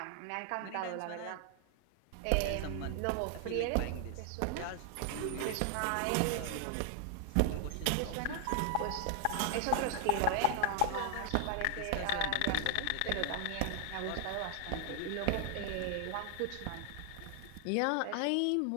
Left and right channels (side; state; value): both; different; correlation 0.00